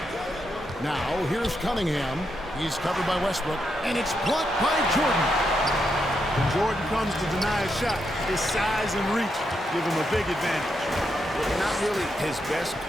Now, here's Cunningham. He's covered by Westbrook, and it's blocked by Jordan. When Jordan comes to deny a shot, his size and reach give him a big advantage. Not really his best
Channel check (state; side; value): normal; both; correlation 0.82